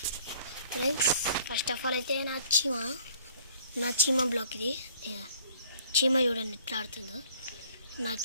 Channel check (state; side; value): inverted; both; correlation -0.57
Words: Friends, first of all అయితే నా చీమా బ్లాగ్ ఇది. చీమ చూడండి ఎట్లా ఆడుతుందో. నా